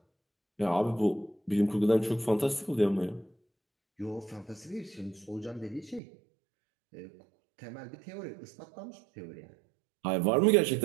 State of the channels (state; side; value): drops out; left; at 6.0 s